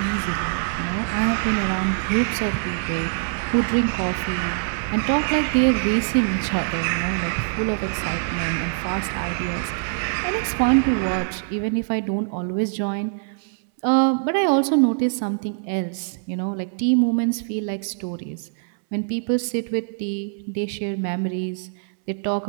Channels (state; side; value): silent; left; 61 dB below the other